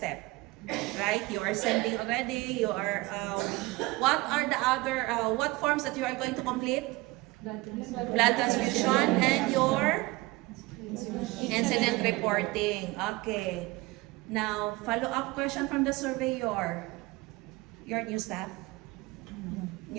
Right? You are sending already, you are, what are the other, what forms that you are going to complete? Blood transfusion and your incident reporting. Okay. Now, follow-up question from the surveyor. Your new staff?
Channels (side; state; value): left; quieter; 21.9 dB